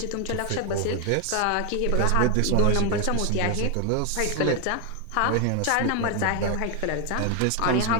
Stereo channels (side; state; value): both; different; correlation 0.01